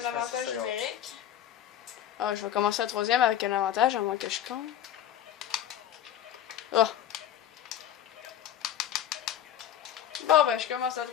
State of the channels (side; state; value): right; quieter; 10.8 dB